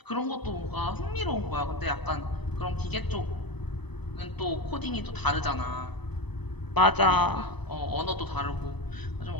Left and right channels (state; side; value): late; right; 0.99 ms